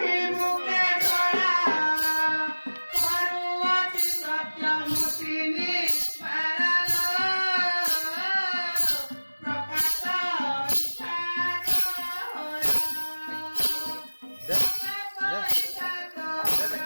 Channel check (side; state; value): both; inverted; correlation -1.00